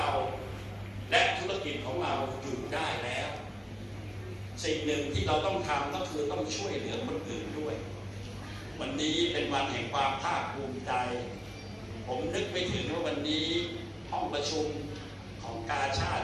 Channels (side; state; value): both; identical; correlation 1.00